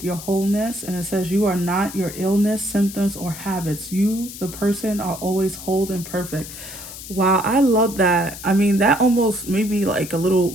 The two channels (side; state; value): left; noise; hiss, 12 dB below the sound